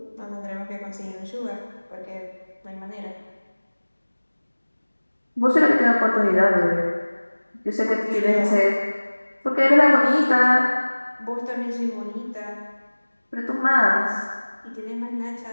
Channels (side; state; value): both; inverted; correlation -1.00